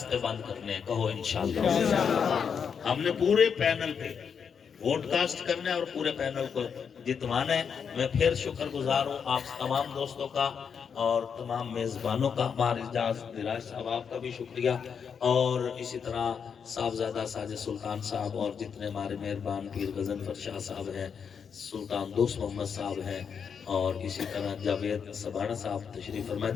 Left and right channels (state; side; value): quieter; right; 6.8 dB